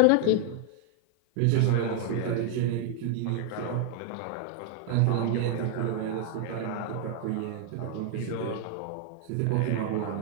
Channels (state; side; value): different; both; correlation 0.00